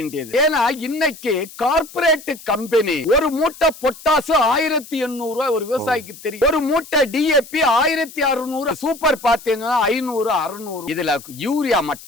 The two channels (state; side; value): noise; left; hiss, 18 dB below the sound